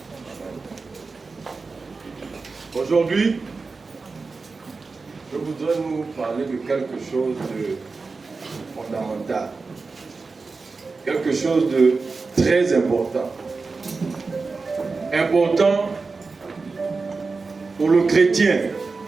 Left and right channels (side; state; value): left; quieter; 4.2 dB